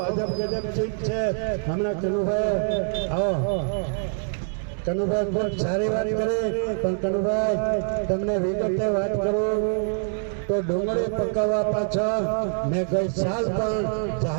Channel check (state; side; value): silent; left; 62 dB below the other